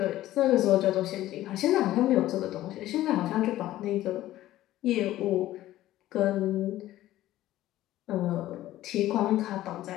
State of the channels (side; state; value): right; quieter; 14.7 dB